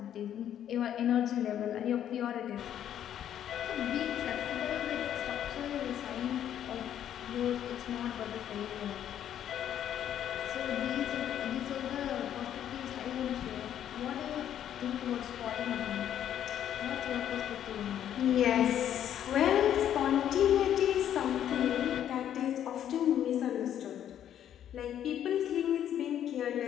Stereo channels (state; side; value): quieter; right; 10.4 dB